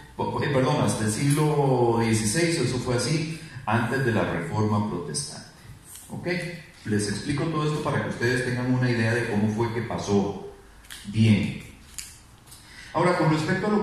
hasta el siglo XVI, eso fue así, antes de la Reforma Protestante. ¿Ok? Les explico todo esto para que ustedes tengan una idea de cómo fue que pasó. Bien. Ahora, con respecto a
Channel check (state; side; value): identical; both; correlation 1.00